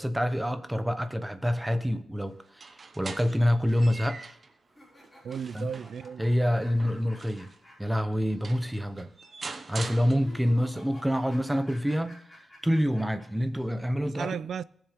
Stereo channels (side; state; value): both; normal; correlation 0.98